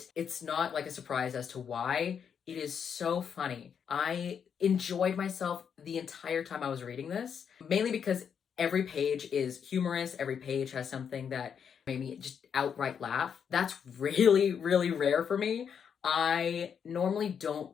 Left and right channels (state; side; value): quieter; right; 7.4 dB